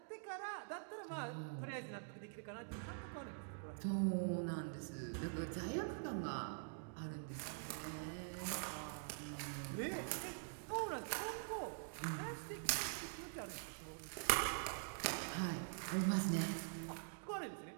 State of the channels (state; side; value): silent; left; digital silence